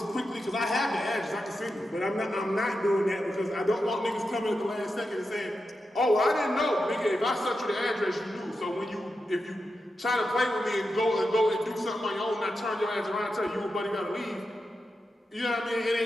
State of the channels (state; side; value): normal; both; correlation 0.89